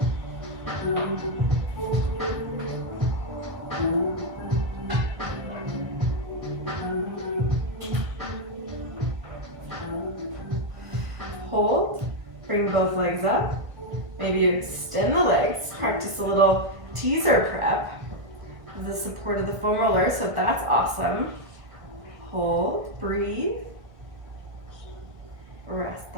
Hold, bring both legs up. Maybe you extend the legs, practice a little teaser prep with the support of the foam roller, so that's awesome. Hold, breathe, rest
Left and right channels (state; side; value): late; left; 1.6 ms